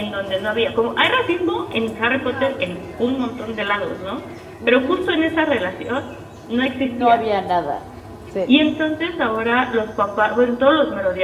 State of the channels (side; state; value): both; identical; correlation 1.00